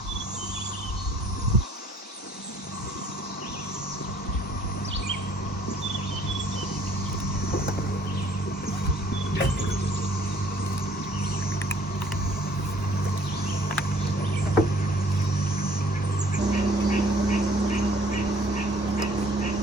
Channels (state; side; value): normal; both; correlation 0.58